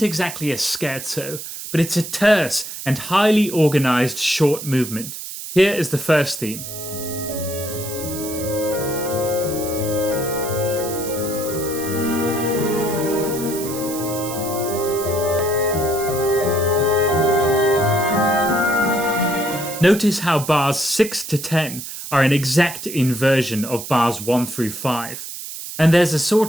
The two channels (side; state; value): right; noise; hiss, 9 dB below the sound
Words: exactly a scherzo, but it's a terse and highly organized short movement. Here is the first theme. Notice how bars 6 to 10 are an exact inversion of bars 1 through 5. And there's a